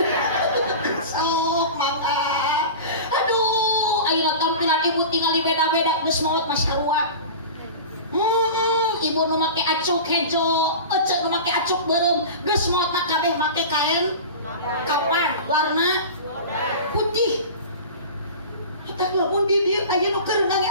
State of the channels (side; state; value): both; inverted; correlation -0.32